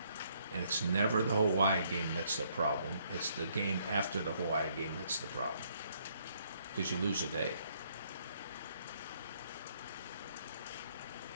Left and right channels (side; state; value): both; inverted; correlation -0.68